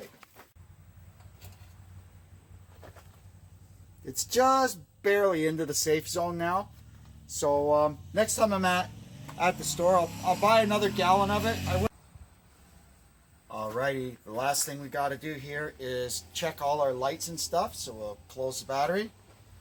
It's just barely into the safe zone now. So next time I'm at the store, I'll buy another gallon of it. Alrighty, the last thing we got to do here is check all our lights and stuff. So we'll close the battery,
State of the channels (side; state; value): both; identical; correlation 1.00